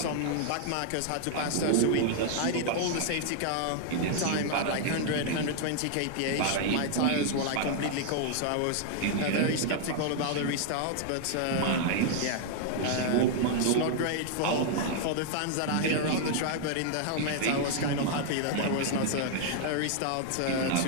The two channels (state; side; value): different; both; correlation 0.00